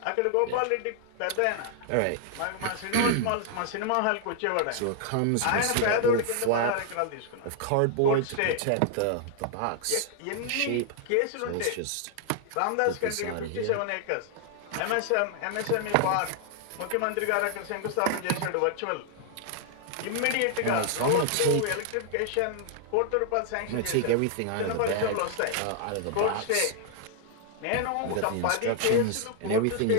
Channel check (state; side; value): different; both; correlation 0.00